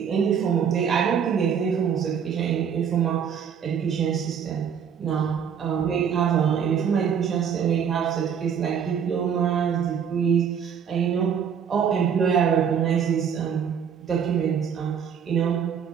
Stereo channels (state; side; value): quieter; left; 7.6 dB